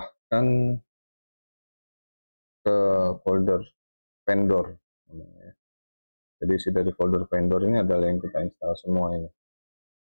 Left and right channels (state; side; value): inverted; both; correlation -1.00